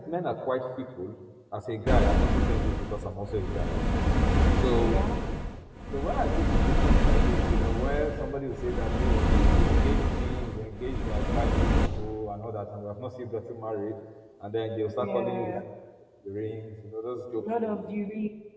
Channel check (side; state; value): both; identical; correlation 1.00